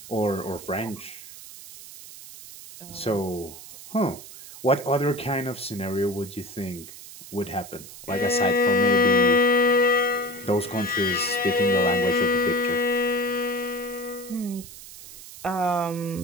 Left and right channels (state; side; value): noise; right; hiss, 16 dB below the sound